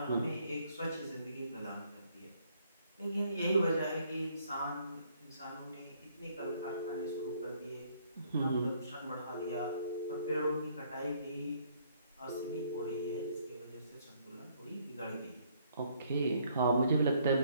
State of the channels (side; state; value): both; inverted; correlation -0.66